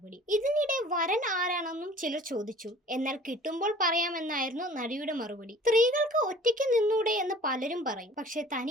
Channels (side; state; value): both; normal; correlation 0.48